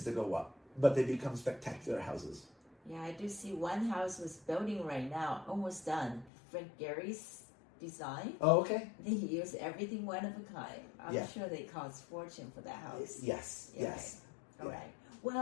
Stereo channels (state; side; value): drops out; right; at 6.3 s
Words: to go up, but they become spectacular houses. Yeah, I do see one house was building right now, almost done. Frank Gehry's design. Oh, okay. They use everything one of a kind. I'm Yeah. sure they cost fortune for that house. Yes, Okay. yes. All Yeah. right.